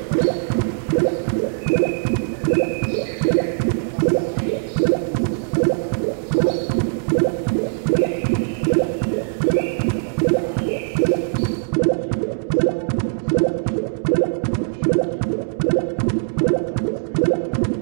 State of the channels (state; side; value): silent; left; digital silence